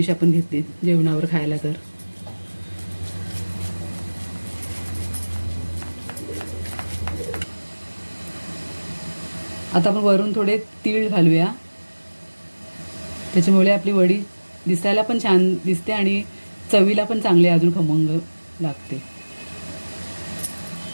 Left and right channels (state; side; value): inverted; both; correlation -1.00